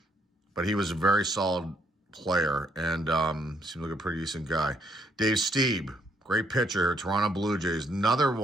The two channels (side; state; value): both; normal; correlation 0.71